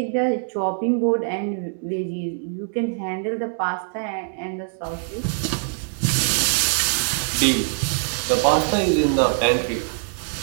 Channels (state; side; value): silent; left; 63 dB below the other